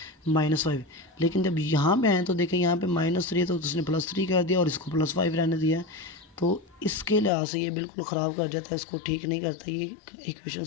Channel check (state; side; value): drops out; right; at 7.3 s